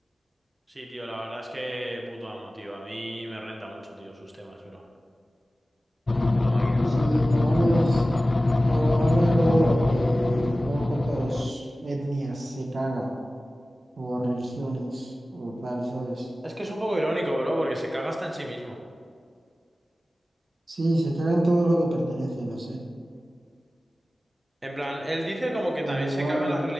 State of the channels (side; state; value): both; normal; correlation 0.96